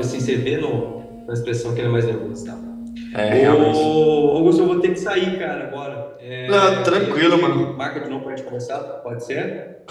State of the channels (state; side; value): identical; both; correlation 1.00